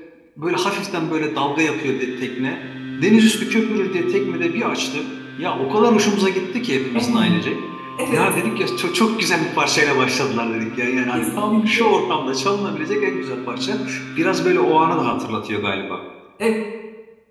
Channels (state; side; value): identical; both; correlation 1.00